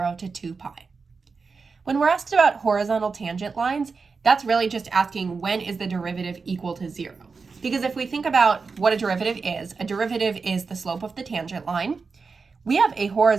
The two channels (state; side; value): quieter; left; 4.7 dB